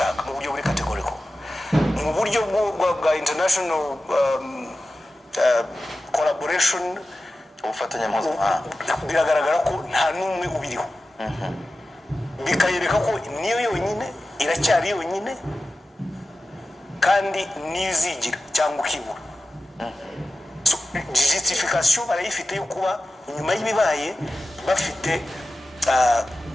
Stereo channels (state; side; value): normal; both; correlation 0.94